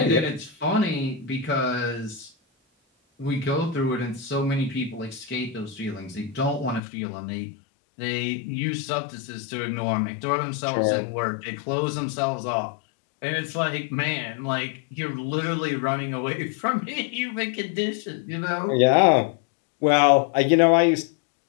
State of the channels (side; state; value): right; drops out; at 6.8 s